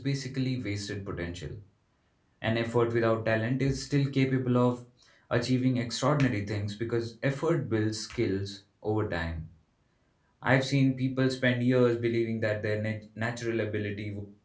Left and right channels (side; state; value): both; identical; correlation 1.00